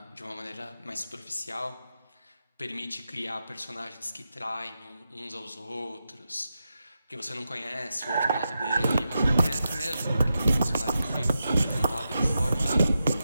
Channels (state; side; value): inverted; both; correlation -0.89